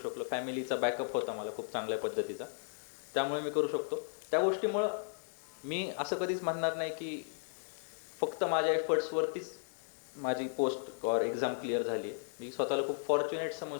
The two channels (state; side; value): silent; right; digital silence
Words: फॅमिलीचा बॅकअप होता मला खूप चांगल्या पद्धतीचा, त्यामुळे मी करू शकतो. त्या गोष्टीमुळं मी असं कधीच म्हणणार नाही की फक्त माझ्या एफर्ट्सवरतीच माझी पोस्ट और एक्झाम क्लिअर झाली आहे. मी स्वतःला खूप फॉर्च्युनेट